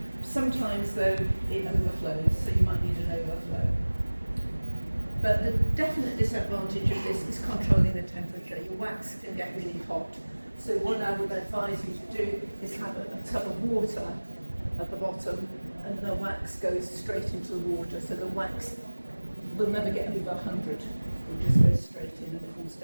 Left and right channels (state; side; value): inverted; both; correlation -1.00